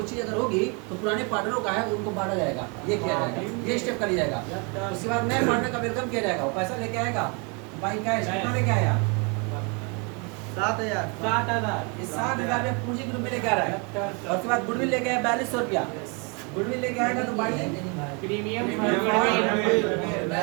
चीज अगर होगी तो पुराने पार्टनरों का है उनको बांटा जाएगा, ये किया जाएगा, ये स्टेप कर लिया जाएगा। उसके बाद नए पार्टनर का वेलकम किया जाएगा, वो पैसा लेके आएगा, बाई कैश कितना लेके आया 7000 इस 7000 में पूंजी के रूप में लेके आ रहा है। और उसके बाद गुडविल लेके आया 4200 रुपया, गुडविल लेके आएगा तो बाई प्रीमियम ये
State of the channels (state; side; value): quieter; left; 33.1 dB